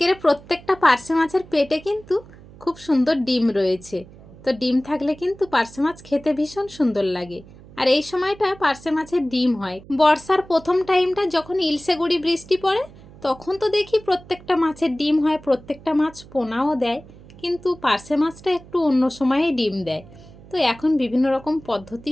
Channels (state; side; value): noise; right; hum, 21 dB below the sound